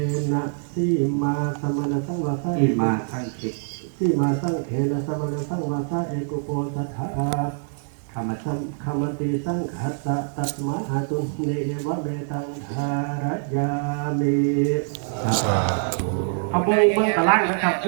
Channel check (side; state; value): left; silent; digital silence